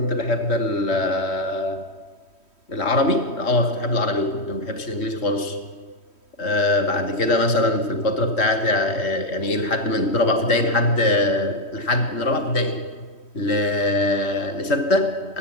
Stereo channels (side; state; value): right; late; 3.1 ms